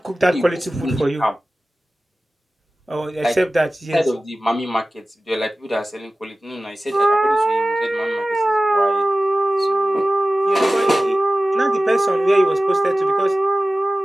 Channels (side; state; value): both; normal; correlation 0.95